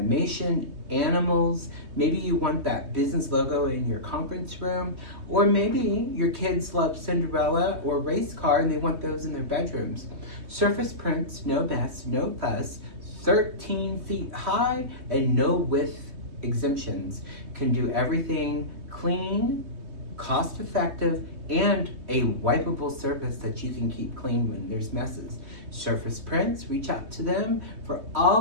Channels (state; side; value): late; left; 3.2 ms